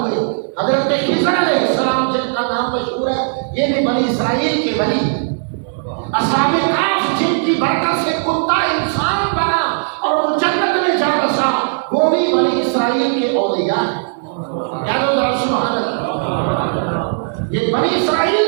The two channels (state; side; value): silent; left; digital silence